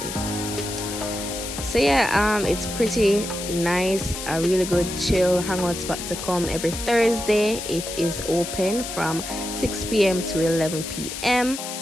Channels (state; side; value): noise; left; hiss, 7 dB below the sound